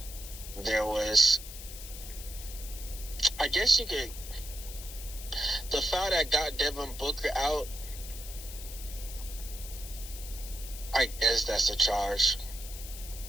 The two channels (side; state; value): left; noise; hiss, 12 dB below the sound